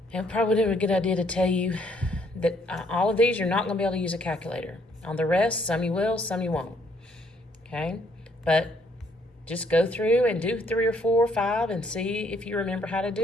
And probably a good idea to tell you that all of these, you're not going to be able to use a calculator. On the rest, some you will, some you won't. Okay? But just go through and do 3 or 4 or 5 and see if you remember how to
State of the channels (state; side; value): normal; both; correlation 0.68